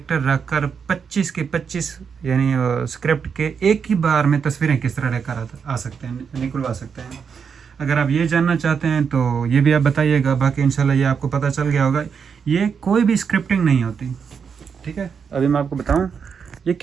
रखकर 25 के 25 यानी स्क्रिप्ट के एक ही बार में तस्वीरें किस तरह लेकर आ सकते हैं, निकलवा सकते हैं। अगर आप ये जानना चाहते हैं तो ये भी आप बताइएगा। बाकी इंशाल्लाह ये आपको पता चल गया होगा, ये कोई भी स्क्रिप्टिंग नहीं होती, ठीक है। अभी मैं आपको बताऊं, ये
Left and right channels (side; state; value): left; quieter; 6.5 dB